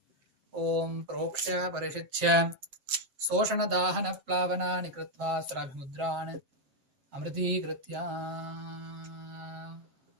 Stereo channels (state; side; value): late; left; 7.8 ms